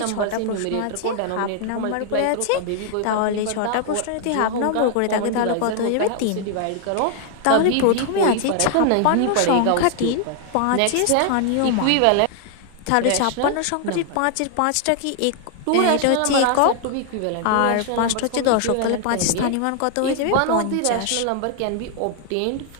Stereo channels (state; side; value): different; both; correlation 0.00